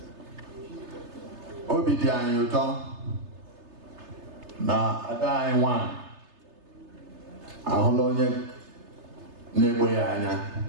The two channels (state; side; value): late; left; 3.3 ms